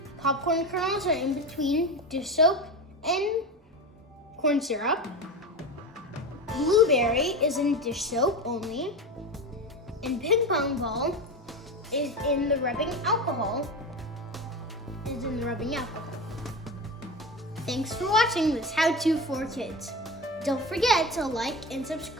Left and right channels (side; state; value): both; normal; correlation 0.24